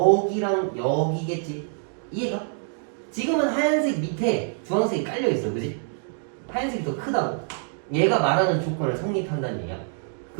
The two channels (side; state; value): left; silent; 61 dB below the other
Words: 여기겠지? 이해가? 지금은 하얀색 밑에 주황색이 깔려있어, 그지? 하얀색이 더 크다고. 얘가 말하는 조건을 성립한다는 얘기야.